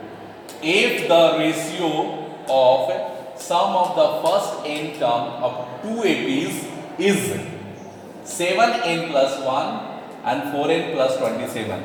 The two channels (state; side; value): identical; both; correlation 1.00